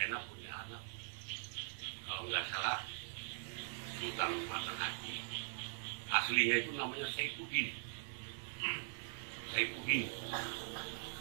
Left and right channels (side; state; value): left; silent; digital silence